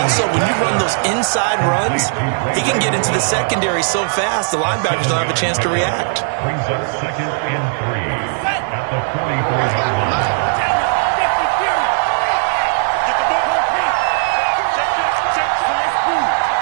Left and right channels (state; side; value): silent; left; digital silence